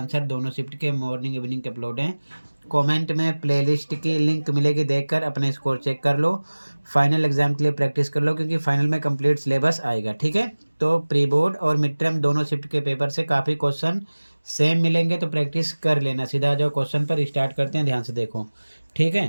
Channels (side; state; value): both; inverted; correlation -1.00